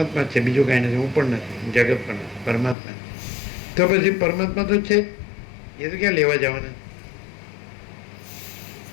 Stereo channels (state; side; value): drops out; right; at 2.8 s